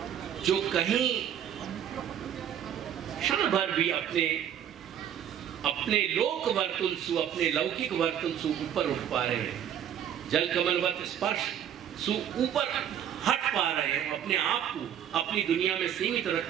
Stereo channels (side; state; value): left; quieter; 9.8 dB